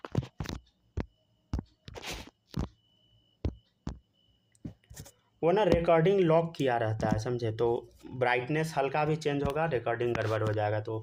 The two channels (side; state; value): both; identical; correlation 1.00